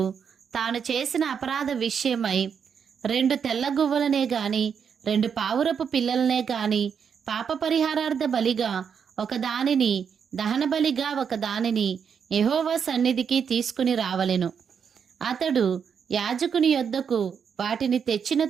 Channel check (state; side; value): quieter; left; 7.0 dB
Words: తాను చేసిన అపరాధ విషయమై 2 తెల్ల గువ్వలనే గాని 2 పావురపు పిల్లలనే గాని పాప పరిహారార్థ బలిగా ఒకదానిని దహన బలిగా ఒకదానిని యెహోవా సన్నిధికి తీసుకుని రావలెను. అతడు యాజకుని యొద్దకు వాటిని తెచ్చిన